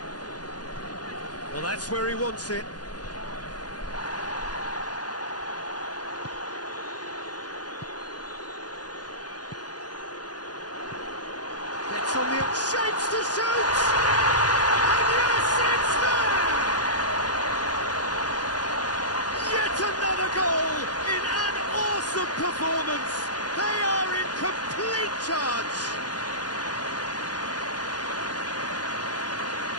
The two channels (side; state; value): right; late; 0.69 ms